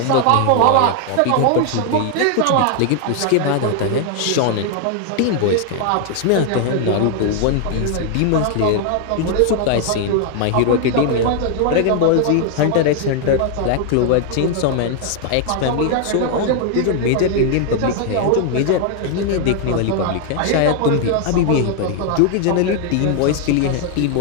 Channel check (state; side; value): different; both; correlation 0.00